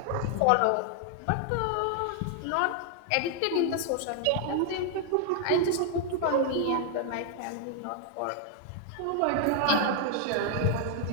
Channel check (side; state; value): both; different; correlation 0.00